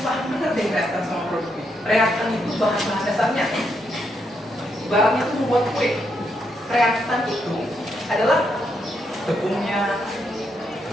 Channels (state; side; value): normal; both; correlation 0.79